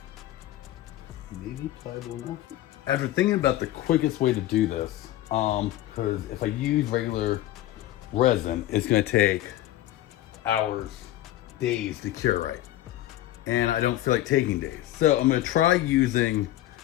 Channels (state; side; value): quieter; right; 14.5 dB